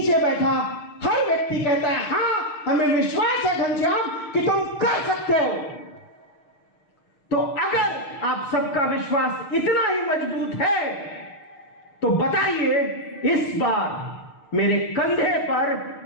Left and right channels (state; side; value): late; right; 6.5 ms